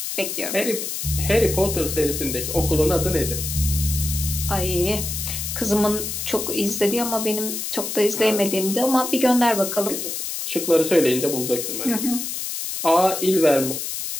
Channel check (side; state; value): left; noise; hiss, 4 dB below the sound